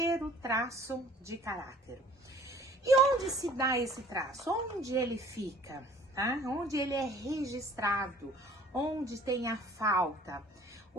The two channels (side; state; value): both; normal; correlation 0.53